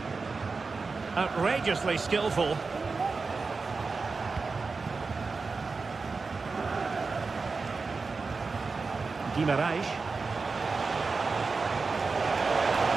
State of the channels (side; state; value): left; quieter; 4.3 dB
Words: Outrageously skillful. Guimarães.